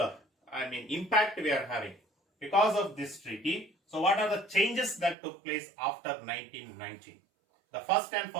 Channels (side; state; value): left; drops out; at 5.2 s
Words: impact we are having because of this treaty. So what are the changes that took place after 1919? The first and